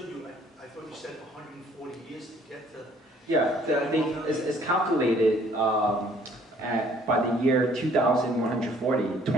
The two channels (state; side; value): normal; both; correlation 0.60